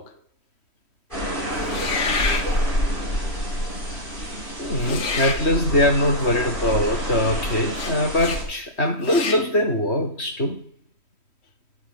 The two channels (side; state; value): right; late; 3.1 ms